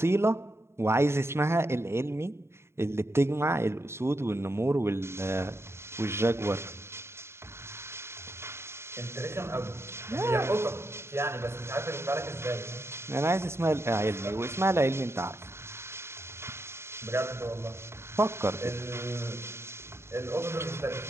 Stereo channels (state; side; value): late; left; 0.12 ms